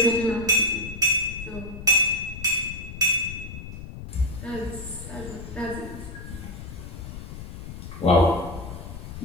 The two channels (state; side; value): noise; left; rumble, 10 dB below the sound